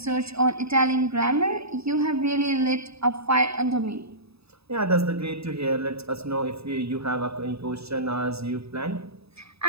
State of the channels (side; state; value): left; late; 0.78 ms